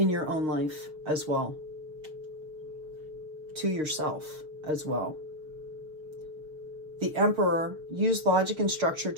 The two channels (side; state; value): left; late; 6.5 ms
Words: your own life as well, to yourself as well. The Emperor, use logic and structure